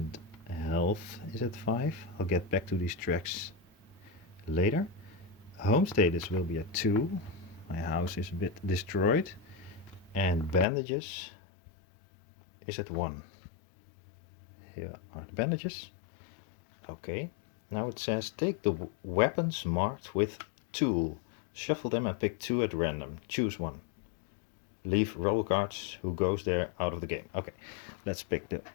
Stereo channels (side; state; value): right; drops out; at 10.7 s